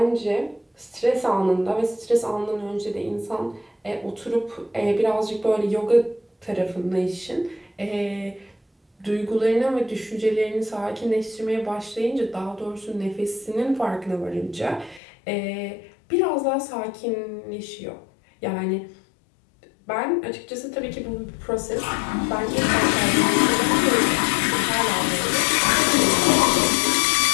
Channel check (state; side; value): drops out; right; at 15.0 s